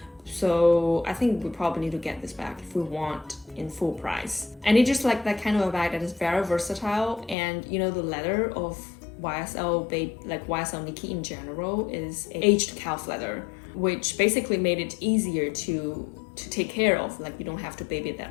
So I think we probably need to get this bag if we want in full price. And it's just like that kind of a bag that is very versatile, and you know, the leather of YSL YSL Niki in general is aged calf leather, which basically made it easier to take care of. Like, you don't have to baby it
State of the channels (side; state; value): right; drops out; at 7.4 s